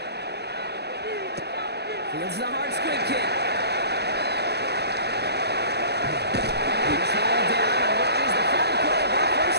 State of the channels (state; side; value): late; left; 0.48 ms